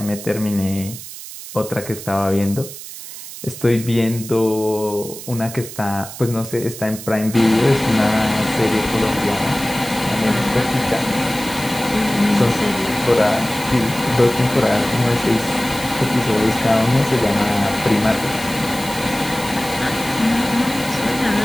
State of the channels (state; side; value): noise; right; hiss, 12 dB below the sound